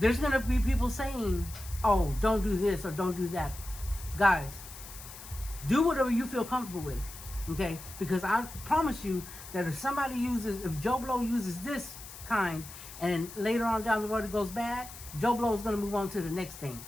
going to be people saying, oh, don't do this or don't do that. Guys, do whatever you feel comfortable with, okay? Because I promise you that if Joe Blow uses this kind and later on down the road it goes bad, Joe Blow is going to move on to the next thing.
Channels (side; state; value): left; noise; hiss, 14 dB below the sound